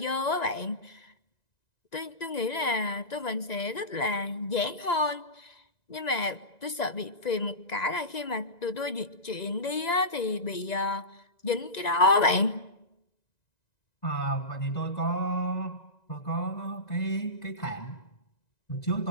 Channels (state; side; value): late; right; 1.9 ms